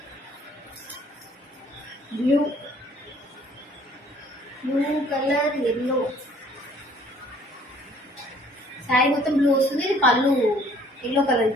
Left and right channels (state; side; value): normal; both; correlation 0.57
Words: blue colour yellow. Sari మొత్తం బ్లూ వస్తుంది. ఇది పళ్ళు ఎల్లో కలర్